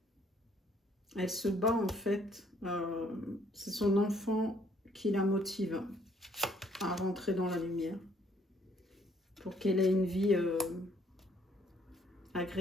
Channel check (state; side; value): normal; both; correlation 0.65